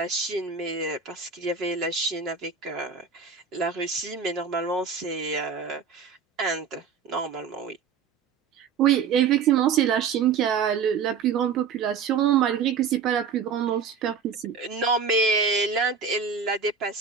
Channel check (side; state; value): left; quieter; 6.2 dB